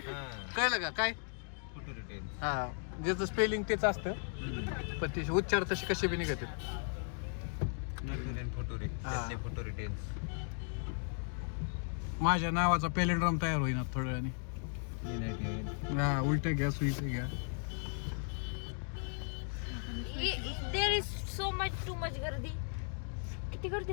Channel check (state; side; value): silent; right; 54 dB below the other